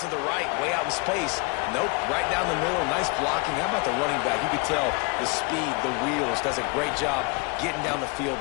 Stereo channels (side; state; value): right; quieter; 29.7 dB